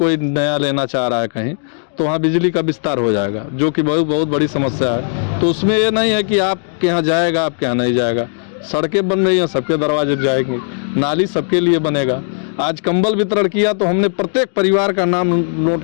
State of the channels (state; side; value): silent; right; digital silence